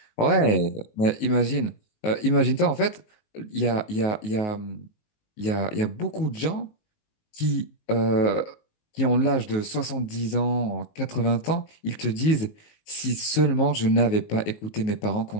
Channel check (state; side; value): late; right; 19 ms